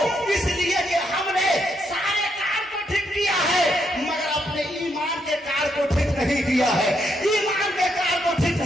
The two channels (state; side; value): normal; both; correlation 0.78